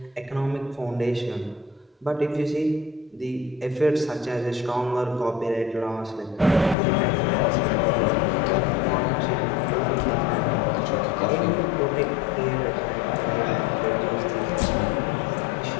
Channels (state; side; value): drops out; right; at 6.8 s